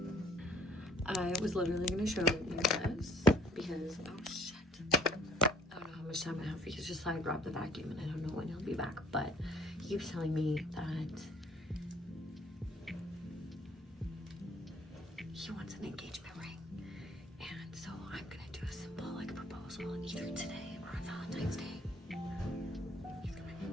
I was literally gonna show you this, because oh shit, I don't know how much time I have, because just I dropped the vacuum and I don't know when he'll be back, but he keeps telling me that he wants an engagement ring, and so I'm gonna do a simple like proposal either today or on Valentine's Day. He's coming.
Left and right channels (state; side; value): normal; both; correlation 0.58